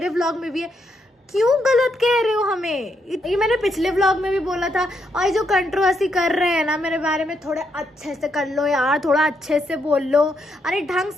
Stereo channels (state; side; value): normal; both; correlation 0.78